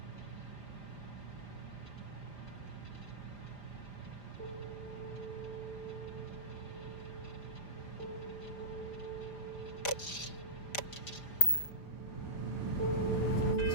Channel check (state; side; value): late; right; 5.0 ms